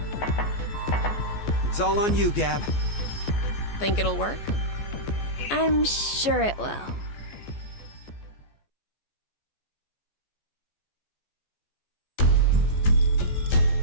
it's all on you, Gab. Think it'll work? I'm sure it will.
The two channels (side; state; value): right; late; 14 ms